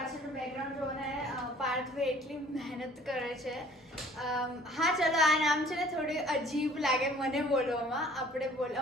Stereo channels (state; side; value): normal; both; correlation 0.53